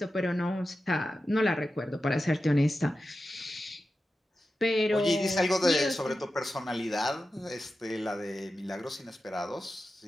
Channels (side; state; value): both; normal; correlation 0.92